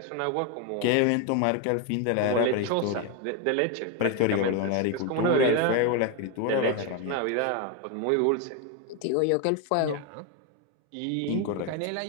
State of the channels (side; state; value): both; different; correlation 0.02